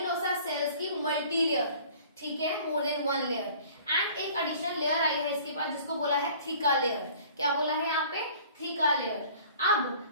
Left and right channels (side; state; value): both; inverted; correlation -0.49